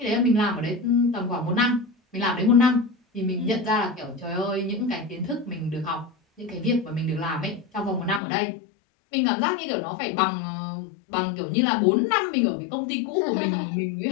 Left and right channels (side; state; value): right; drops out; at 8.2 s